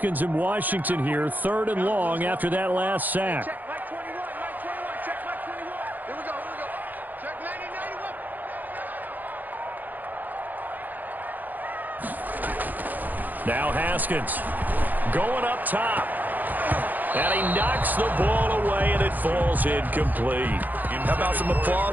in Washington here. 3rd and long after that last sack. Check, Mike 21, Mike 21, check, Mike 21. Here we go, here we go. Check 90, 91. Now Haskins going up top. And he knocks the ball away, and it falls incomplete. How about some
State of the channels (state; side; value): late; left; 0.084 ms